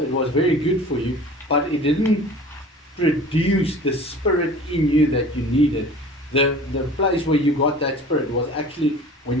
it was very good for you, but it didn't produce the spirit in you that you needed. The place where you got that spirit was actually when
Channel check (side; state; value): both; normal; correlation 0.43